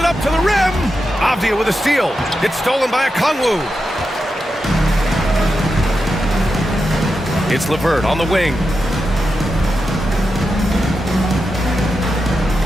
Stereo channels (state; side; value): normal; both; correlation 0.88